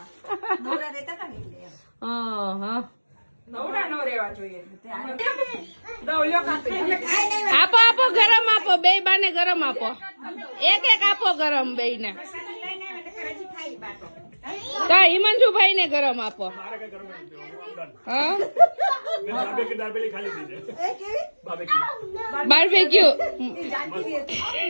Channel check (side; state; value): both; inverted; correlation -1.00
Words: નવરા રહેતા હતા ને એટલે એમ. હા નવરા ન રહેવા જોઈએ. દઉં લ્યો કાપી. આપો આપો ગરમ આપો, બે બાને ગરમ આપો, એક એક આપો ગરમ બે ને. કા હિમાંશુભાઈ ને ગરમ આપો. હા બાર્બેક્યુ